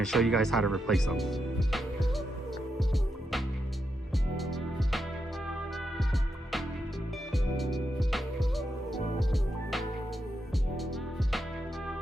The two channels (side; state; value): both; normal; correlation 0.84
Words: show you guys how to replace them.